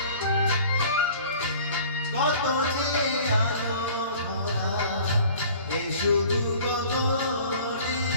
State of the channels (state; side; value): inverted; both; correlation -0.47